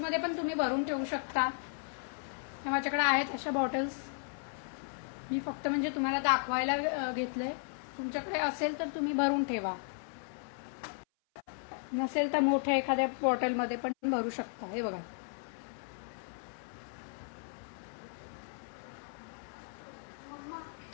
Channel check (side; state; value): right; silent; 54 dB below the other